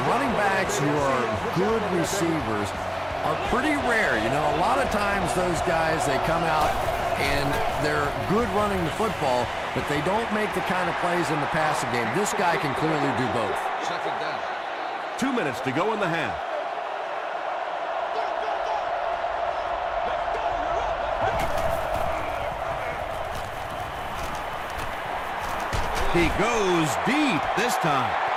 running backs who are good receivers are pretty rare. You know, a lot of times those guys, they come out and they're good running the football, but they don't make the kind of plays in the passing game. This guy can clearly do both. 2 minutes to go in the half. He goes deep this time.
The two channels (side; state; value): both; identical; correlation 1.00